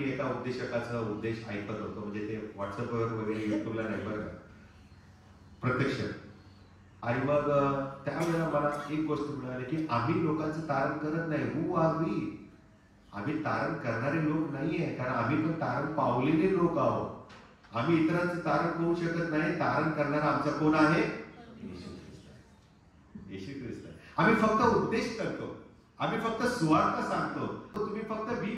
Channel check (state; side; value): identical; both; correlation 1.00